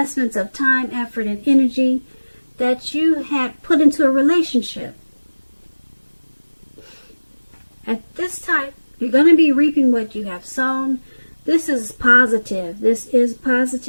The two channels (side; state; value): both; inverted; correlation -1.00